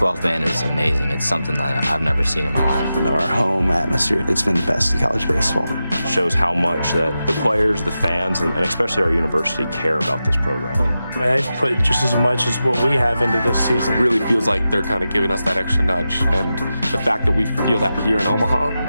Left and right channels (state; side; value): inverted; both; correlation -0.91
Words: man is amazing. It's something that I've never seen in my life. Our home atmosphere, it's been the best in college baseball. Shows how much that the players, the fans, and especially our university care about this program. I mean, they've put just as much as what we have into this season. It really feels like they're kind of giving us that extra nudge, and the fact that we feel that here in Omaha